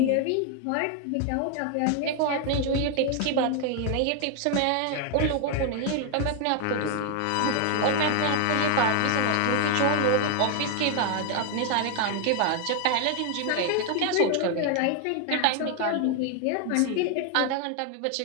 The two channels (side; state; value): both; different; correlation 0.01